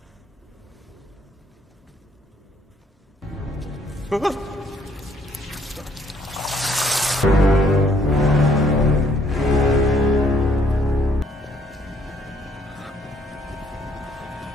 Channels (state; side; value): normal; both; correlation 0.65